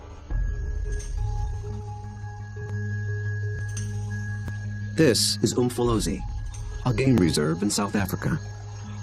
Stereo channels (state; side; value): identical; both; correlation 1.00